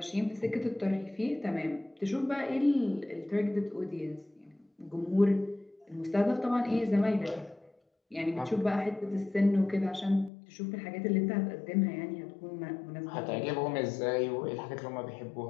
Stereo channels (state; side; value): drops out; right; at 10.3 s